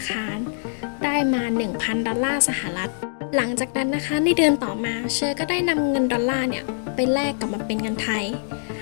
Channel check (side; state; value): right; silent; digital silence